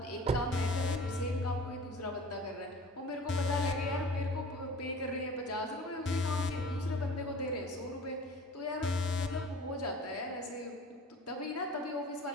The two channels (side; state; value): both; normal; correlation 0.43